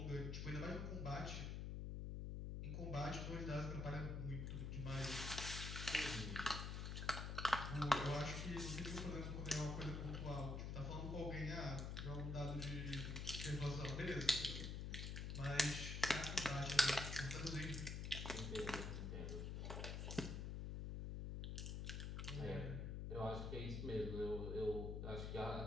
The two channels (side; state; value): left; noise; hum, 3 dB below the sound